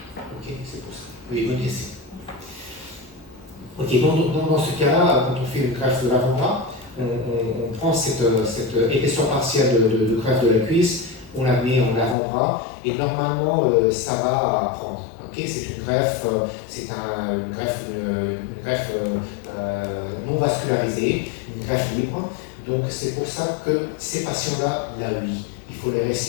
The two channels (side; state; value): right; drops out; at 12.2 s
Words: Ok, c'est pour ça. Oui, bonne question. Ok, dans ce cas-là, quand on fait une greffe de l'avant-bras, on prend cette épaisseur partielle de greffe de la cuisse, on la met en avant-bras et normalement ça va prendre. Okay, c'est une greffe, une greffe non vascularisée, une greffe libre. Donc c'est pour ça que ces patients-là, oui, il faut les